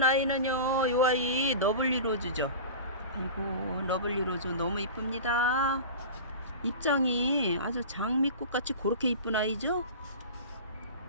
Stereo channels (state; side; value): inverted; both; correlation -0.32